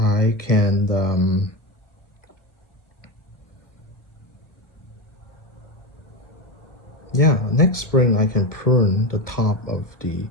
can next spring I can prune the top of the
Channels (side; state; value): right; late; 1.4 ms